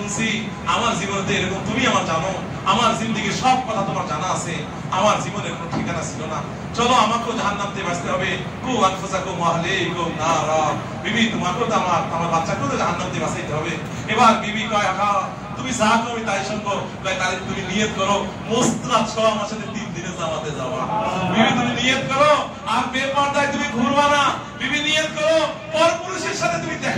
আমার জীবনে এরকম, তুমি আমার জানো, আমার জিন্দেগির সব কথা তোমার জানা আছে, আমার জীবনের কোনো ঠিকানা ছিল না, চলো আমাকেও জাহান্নাম থেকে বাঁচতে হবে। কু আনফুসাকুম ওয়া আহলিকুম নারা, বিবি তোমাকেও তো আমার বাচ্চাকেও তো জাহান্নাম থেকে বাঁচাইতে হবে। এবার বিবি কয় আহা তুমি যা করবে তাই শুনবো। তাহলে তুমি নিয়ত করো মুস্তাদ 6 মাসে 3 দিনে জামাতে যাওয়া। বিবি তুমি নিয়ত করো, আর বেপরদায় তুমি ঘুরবা না। বিবি নিয়ত করো পরপুরুষের সাথে তুমি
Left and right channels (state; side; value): identical; both; correlation 1.00